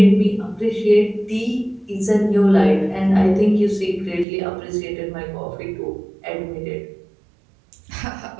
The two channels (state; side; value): drops out; left; at 4.2 s